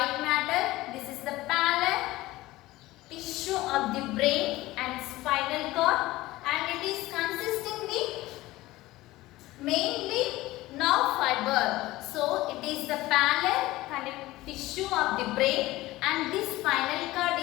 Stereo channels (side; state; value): right; quieter; 18.0 dB